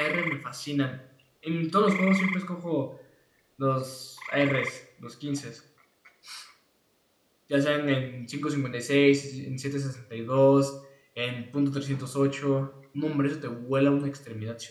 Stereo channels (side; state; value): both; identical; correlation 1.00